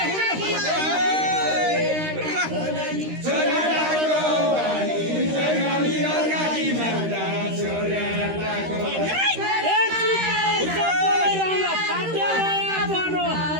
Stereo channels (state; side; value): late; left; 13 ms